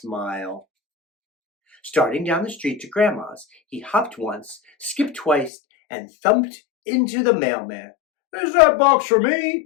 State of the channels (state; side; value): drops out; right; at 5.5 s